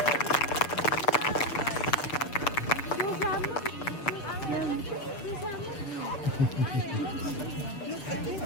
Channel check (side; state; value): right; late; 7.3 ms